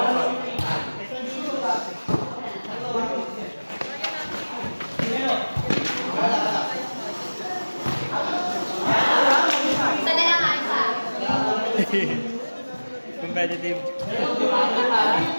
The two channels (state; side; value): inverted; both; correlation -1.00